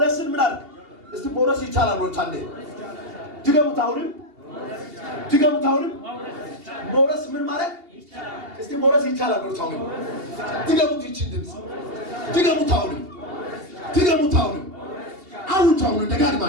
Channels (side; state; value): left; late; 2.8 ms